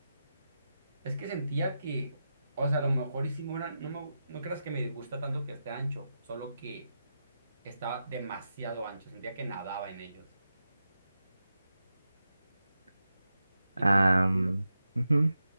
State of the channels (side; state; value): both; inverted; correlation -0.89